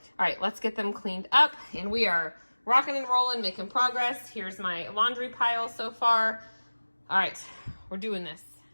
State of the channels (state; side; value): inverted; both; correlation -1.00